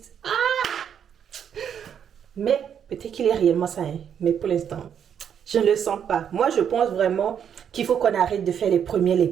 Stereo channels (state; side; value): quieter; left; 8.4 dB